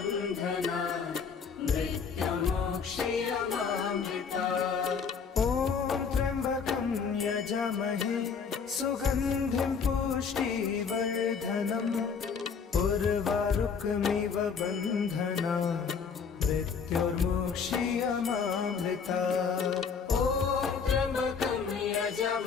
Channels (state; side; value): quieter; right; 5.9 dB